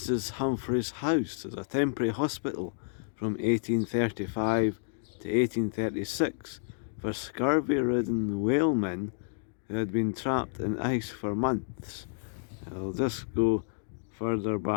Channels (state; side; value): silent; right; digital silence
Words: Humphrey's house is a temporary hospital from 1835 to 1836 for scurvy-ridden whalemen who had been trapped in ice for months. I'll just go further